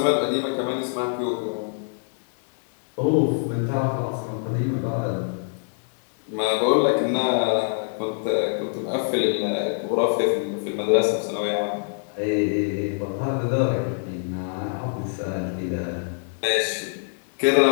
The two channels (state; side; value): silent; right; 62 dB below the other